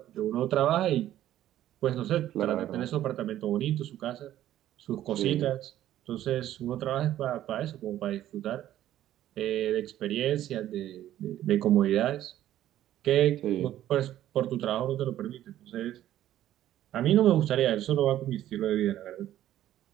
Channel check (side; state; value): left; quieter; 12.7 dB